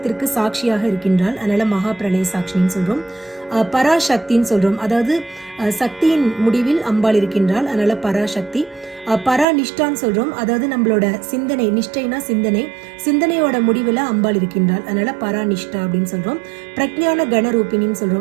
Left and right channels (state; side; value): drops out; left; at 9.5 s